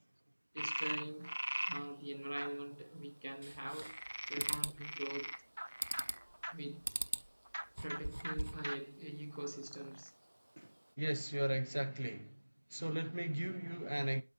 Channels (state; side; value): inverted; both; correlation -1.00